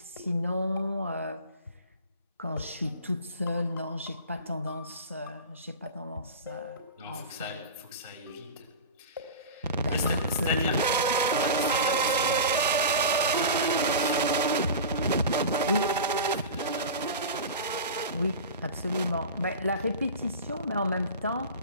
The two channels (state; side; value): inverted; both; correlation -0.31